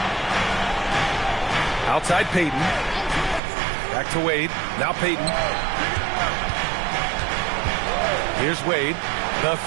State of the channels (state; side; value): drops out; left; at 3.4 s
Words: Outside Payton. Back to Wade. Now Payton. Here's Wade. The